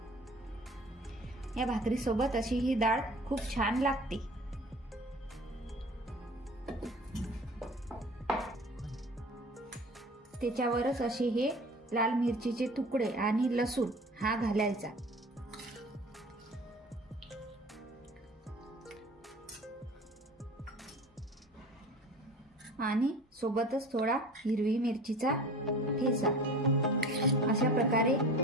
या भाकरी सोबत अशी ही डाळ खूप छान लागते। त्याच्यावरच असे हे लाल मिरचीचे तुकडे आणि लसूण हा घालायचा आणि सोबतच थोडा हिरवी मिरचीचा ठेचा। अशा प्रकारे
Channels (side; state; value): both; normal; correlation 0.41